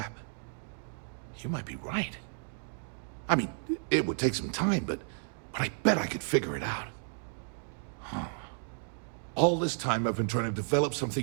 You might be right. I mean, it would take some time, but I bet I could figure it out. Huh. All this time I've been trying to develop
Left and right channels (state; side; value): silent; left; 55 dB below the other